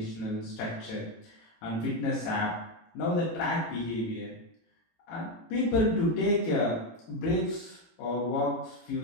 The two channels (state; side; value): late; right; 18 ms